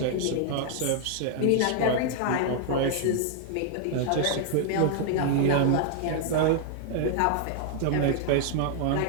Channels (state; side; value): different; both; correlation -0.01